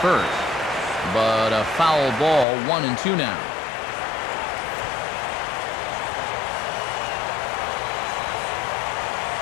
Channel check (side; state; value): right; drops out; at 2.5 s